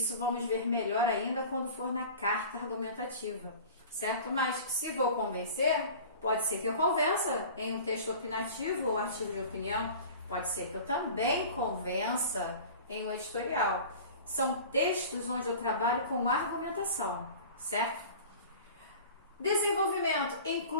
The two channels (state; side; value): inverted; both; correlation -0.40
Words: vamos ver melhor ainda quando for na carta argumentativa, certo? Mas se vou convencer, pode ser que eu convença em um texto opinativo ou artigo de opinião, pode ser que eu também convença em um editorial. São textos onde eu trabalho com argumentação, certo? Desenvolvimento